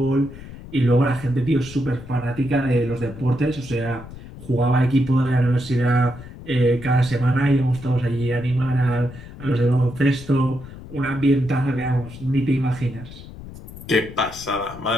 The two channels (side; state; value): left; noise; rumble, 15 dB below the sound